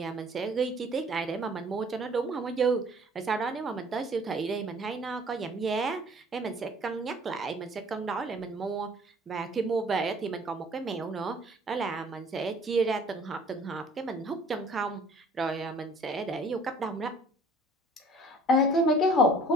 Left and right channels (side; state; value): both; normal; correlation 0.53